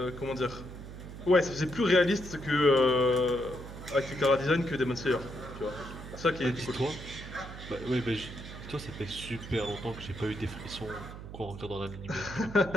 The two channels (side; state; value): right; noise; hum, 12 dB below the sound